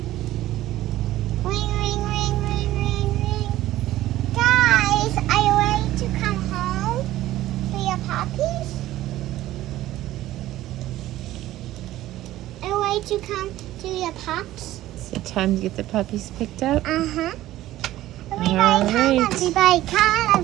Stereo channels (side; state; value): left; quieter; 14.9 dB